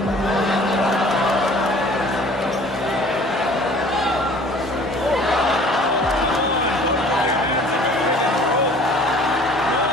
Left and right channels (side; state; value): both; normal; correlation 0.50